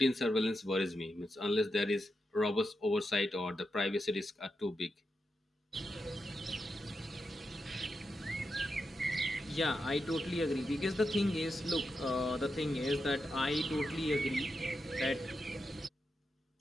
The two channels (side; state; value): both; normal; correlation 0.87